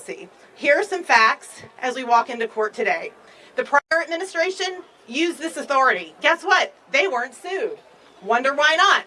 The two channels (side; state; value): both; identical; correlation 1.00